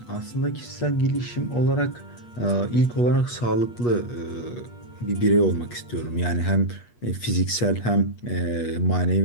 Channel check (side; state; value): right; late; 8.3 ms